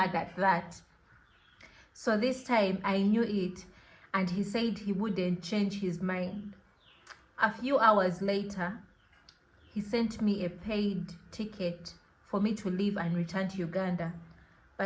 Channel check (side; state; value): both; identical; correlation 1.00